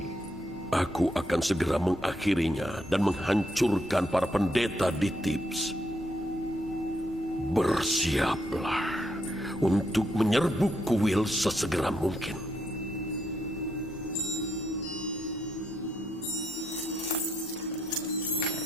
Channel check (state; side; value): normal; both; correlation 0.78